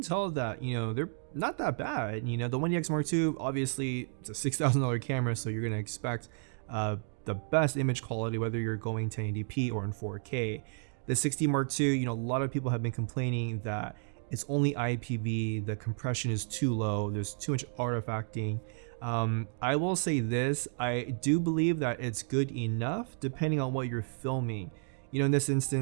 that, they're not that bad. The 1DX Mark II, obviously it's a $6,000 camera, so you're gonna expect the best image quality, whether you're going 1080p or in 4K. The 60 Mark II, a lot of people have been complaining that it's only IPV, the compression is too low, there's too much artifacting. I will say this, I do believe that it's good enough depending on what you're filming. In this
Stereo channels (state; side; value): silent; left; digital silence